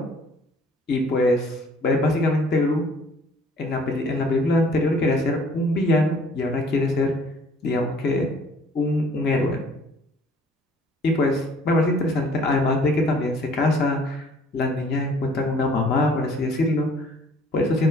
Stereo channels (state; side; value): normal; both; correlation 0.56